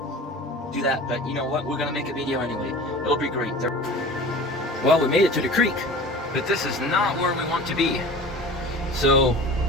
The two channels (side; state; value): both; normal; correlation 0.39